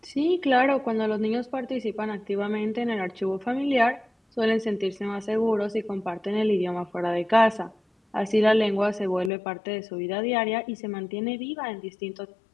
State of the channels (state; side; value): drops out; right; at 9.3 s